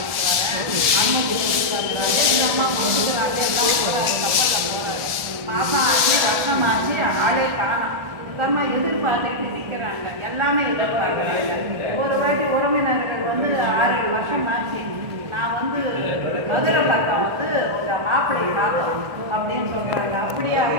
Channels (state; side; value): late; left; 1.3 ms